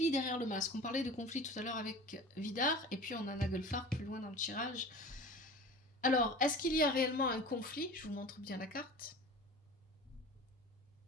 derrière le masque. On parlait de conflit tout à l'heure avec Vidar, et puis on a Nagelfar plus loin dans le tirage. Alors, est-ce qu'il y a réellement un conflit? Je vous montre bien la carte.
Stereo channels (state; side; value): normal; both; correlation 0.37